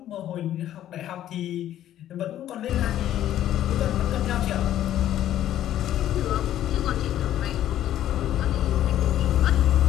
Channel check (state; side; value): quieter; right; 12.0 dB